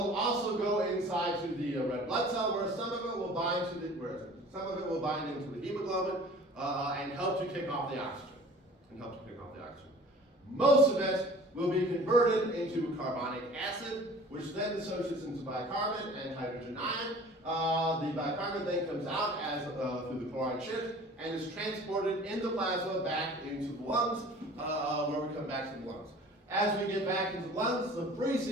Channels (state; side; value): normal; both; correlation 0.46